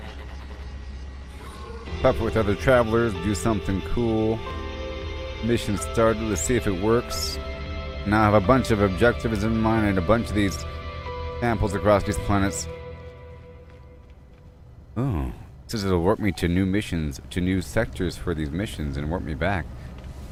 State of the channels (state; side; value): identical; both; correlation 1.00